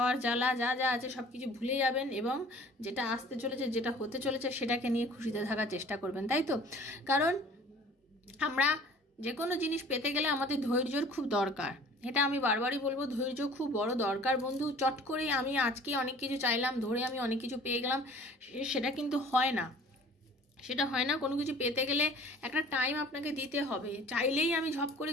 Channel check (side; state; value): both; normal; correlation 0.48